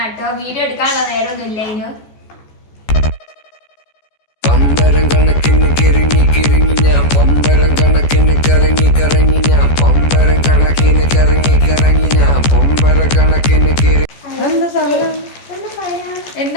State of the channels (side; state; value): right; late; 14 ms